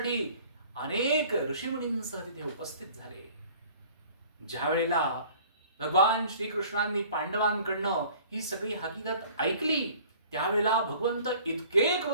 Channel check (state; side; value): inverted; both; correlation -0.50